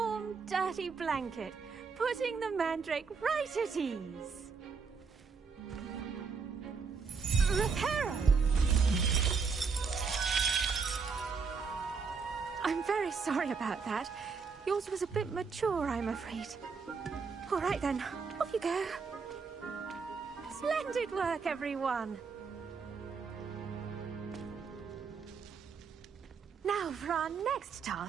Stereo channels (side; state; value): left; quieter; 5.4 dB